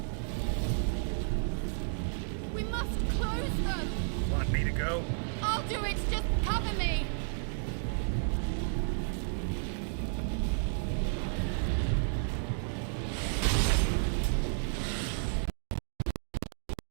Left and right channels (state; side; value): silent; left; digital silence